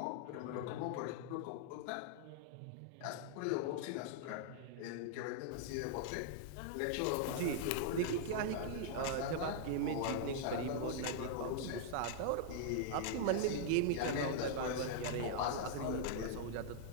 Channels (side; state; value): both; different; correlation -0.01